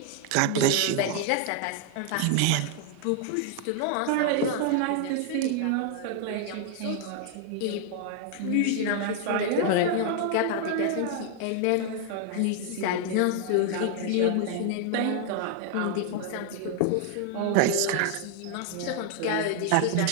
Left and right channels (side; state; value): both; different; correlation 0.00